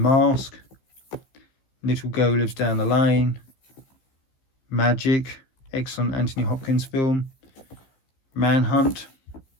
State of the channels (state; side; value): late; right; 15 ms